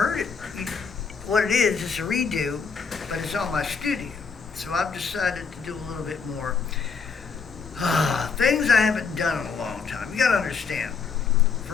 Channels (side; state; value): right; quieter; 5.5 dB